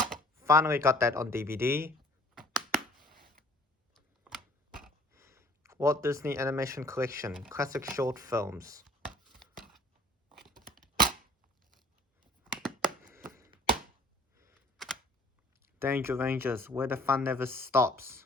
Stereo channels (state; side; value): normal; both; correlation 0.53